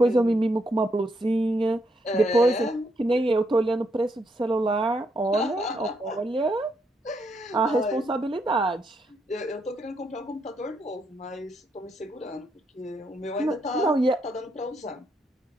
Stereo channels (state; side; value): normal; both; correlation 0.77